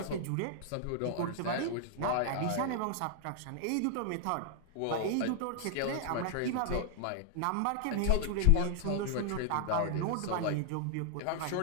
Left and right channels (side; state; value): both; different; correlation 0.00